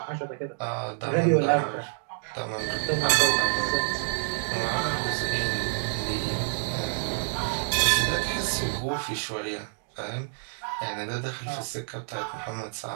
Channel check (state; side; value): silent; left; digital silence